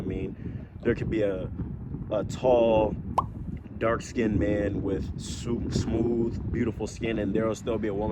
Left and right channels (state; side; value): identical; both; correlation 1.00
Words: mean? There could be a tall, dark-skinned man with smooth, beautiful skin, and there'll still be a